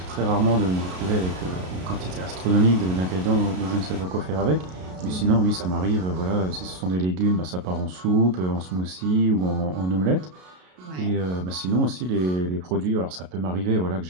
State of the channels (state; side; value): late; left; 33 ms